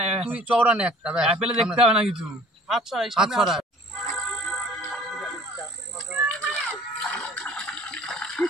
তুই চওড়া নে একটা, অ্যাপেলে দেখতে হবে না কিছু। আচ্ছা আচ্ছা আচ্ছা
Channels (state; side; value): normal; both; correlation 0.52